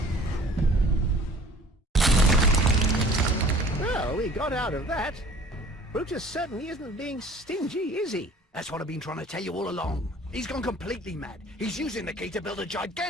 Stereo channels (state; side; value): normal; both; correlation 0.50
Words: Well, we got out of that. Brutus certainly isn't being stingy, is he? That's what I've been trying to tell you all along. He's gone completely mad. He's using the key to build a